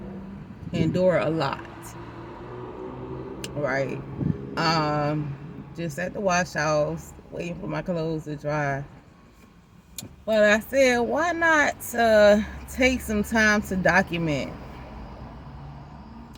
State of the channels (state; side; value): identical; both; correlation 1.00